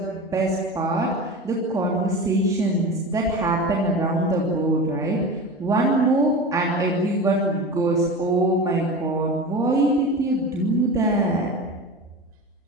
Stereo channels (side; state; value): both; normal; correlation 0.30